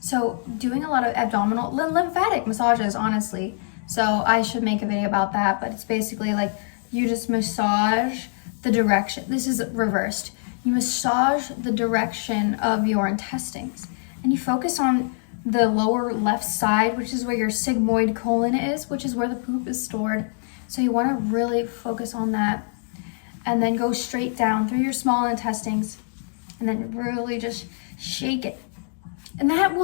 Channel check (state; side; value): silent; right; digital silence